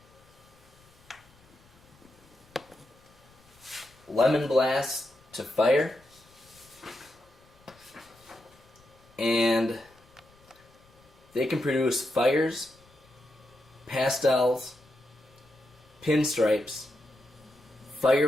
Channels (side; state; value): left; noise; rumble, 29 dB below the sound